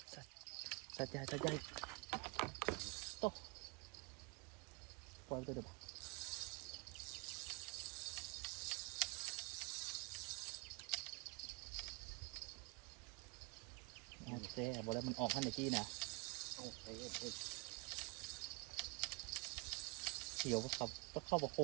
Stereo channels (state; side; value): quieter; left; 29.0 dB